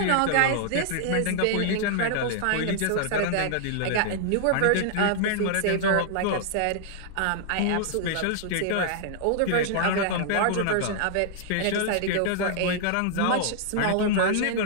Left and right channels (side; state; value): both; different; correlation -0.01